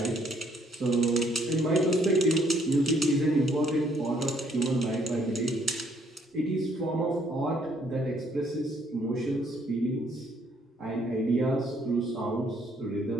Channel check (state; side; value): normal; both; correlation 0.66